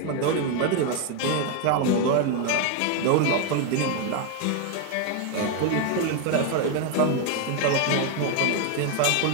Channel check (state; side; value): different; both; correlation 0.01